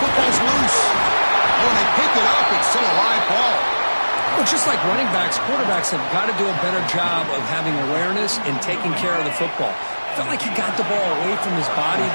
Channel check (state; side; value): inverted; both; correlation -1.00